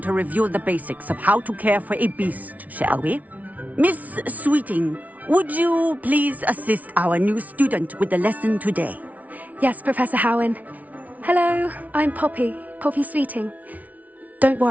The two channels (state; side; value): late; left; 0.072 ms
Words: to review the basics of how to care for a beast, shall we? Miss Sweeting, would you please assist our new student with the lesson today? Yes, Professor Howen. Hello, I'm Poppy Sweeting. Don't